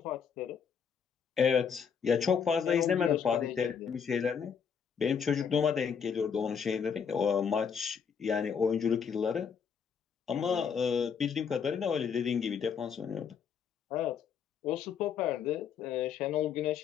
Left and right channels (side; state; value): right; quieter; 6.9 dB